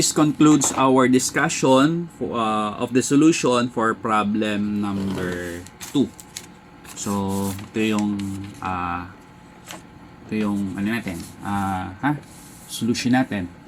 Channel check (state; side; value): identical; both; correlation 1.00